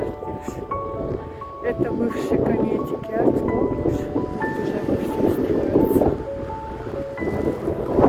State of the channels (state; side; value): identical; both; correlation 1.00